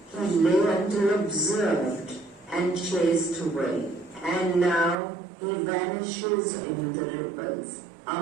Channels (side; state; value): left; drops out; at 5.0 s